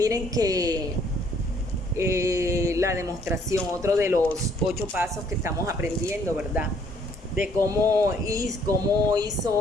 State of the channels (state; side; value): normal; both; correlation 0.64